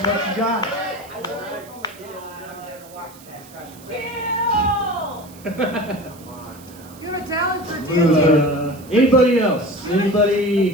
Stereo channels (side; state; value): right; noise; hiss, 22 dB below the sound